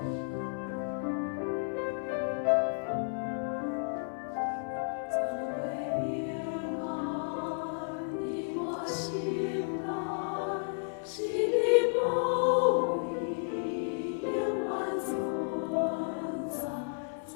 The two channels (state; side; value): silent; right; 56 dB below the other